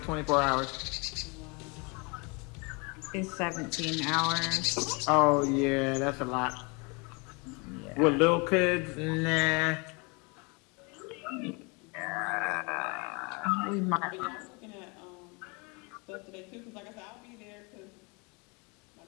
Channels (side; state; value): right; quieter; 30.5 dB